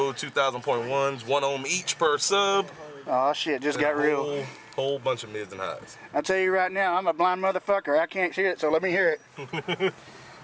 2000.1's, 1 ohm each per sub. Oh shit, just got real. Whole bunch of mids and highs. I'll tell you right now, I'm a blind motherfucker. I can't hear it, so let me hear it.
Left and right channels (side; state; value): both; identical; correlation 1.00